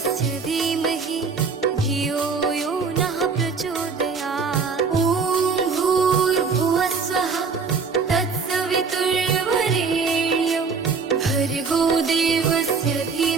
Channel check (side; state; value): left; quieter; 5.0 dB